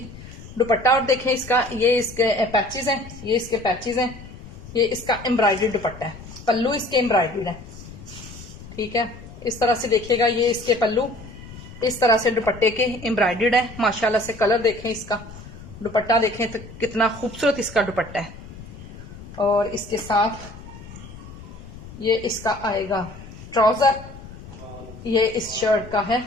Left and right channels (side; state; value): left; noise; rumble, 15 dB below the sound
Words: दुपट्टा, और देखें इसका, ये इसके पैचेस हैं, ये इसके पैचेस हैं, ये इसका एम्ब्रॉयडर्ड दुपट्टा है, पल्लू इसके एम्ब्रॉयडर्ड है, ठीक है। इस तरह से देखिएगा, ये इसके पल्लू इस तरह से दुपट्टे के एम्ब्रॉयडर्ड है। माशाल्लाह से कलर देखें, इसका दुपट्टा देखें तो कितना खूबसूरत इसका दुपट्टा है। और इसके साथ ये इसका आएगा ट्राउजर, ये इस शर्ट का है